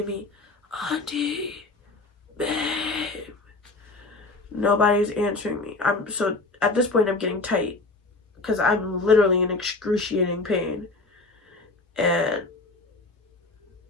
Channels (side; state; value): right; quieter; 3.3 dB